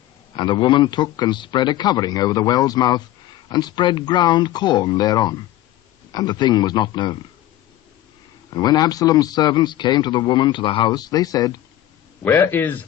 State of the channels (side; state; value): right; quieter; 13.8 dB